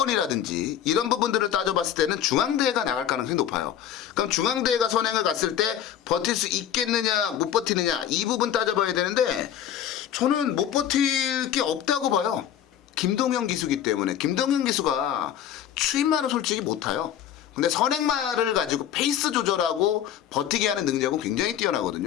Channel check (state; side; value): quieter; right; 10.2 dB